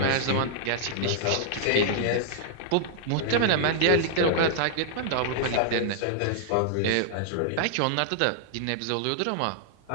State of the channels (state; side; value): different; both; correlation -0.01